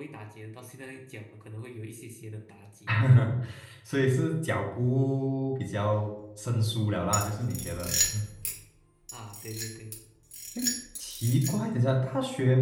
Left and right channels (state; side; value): identical; both; correlation 1.00